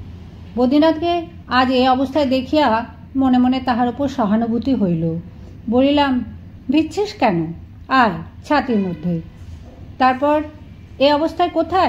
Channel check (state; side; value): identical; both; correlation 1.00